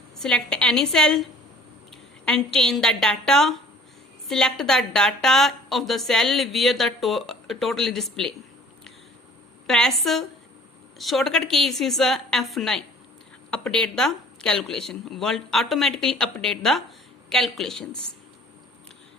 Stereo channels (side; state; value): both; normal; correlation 0.51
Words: Select any cell and change the data. Select the data of the cell where the total is displayed. Press shortcut key is F9. Update the calculation. World automatically update the calculations.